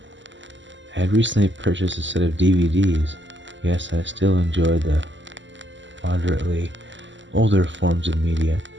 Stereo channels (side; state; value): left; late; 0.54 ms